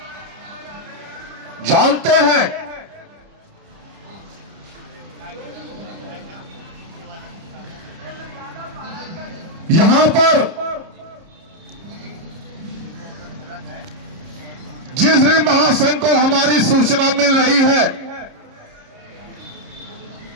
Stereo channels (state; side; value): late; left; 30 ms